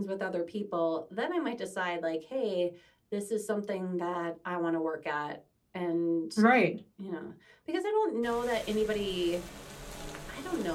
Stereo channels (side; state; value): both; identical; correlation 1.00